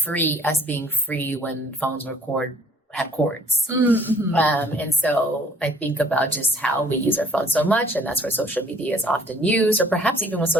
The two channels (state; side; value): normal; both; correlation 0.56